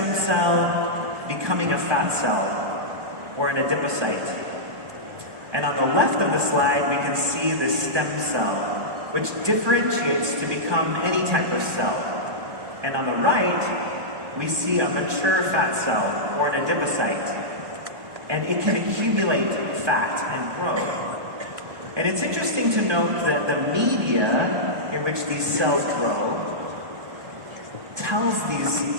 cell, becoming a fat cell, or an adipocyte. And on the left of the slide, we can see the stem cell, which differentiates to become any type of cell. And on the right, we see a mature fat cell, or an adipocyte. And it can accumulate fat and grow. And it's interesting to note that the media in which these cells grow tells these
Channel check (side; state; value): left; late; 1.2 ms